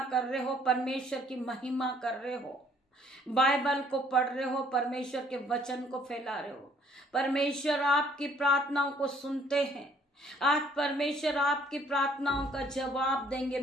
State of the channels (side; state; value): both; normal; correlation 0.62